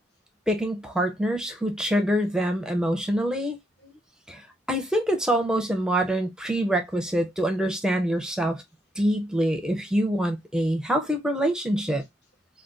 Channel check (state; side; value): normal; both; correlation 0.78